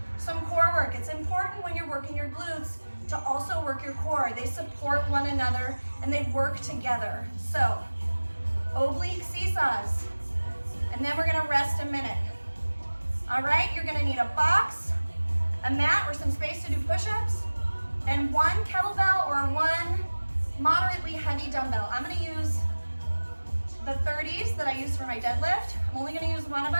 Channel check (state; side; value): inverted; both; correlation -1.00